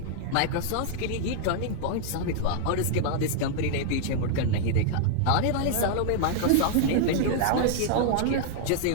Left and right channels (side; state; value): both; different; correlation 0.00